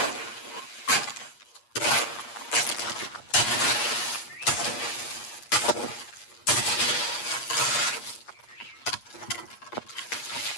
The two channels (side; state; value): right; late; 8.4 ms